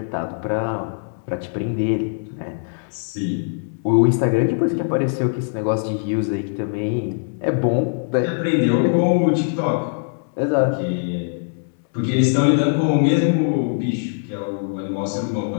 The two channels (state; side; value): silent; right; 65 dB below the other